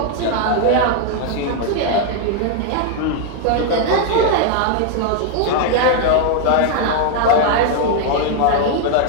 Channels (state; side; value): different; both; correlation 0.00